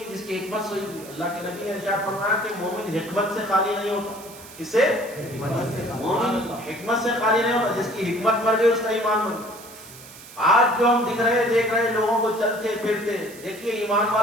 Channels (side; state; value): right; noise; hiss, 18 dB below the sound